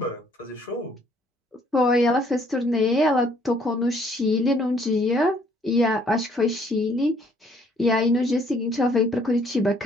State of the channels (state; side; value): normal; both; correlation 0.64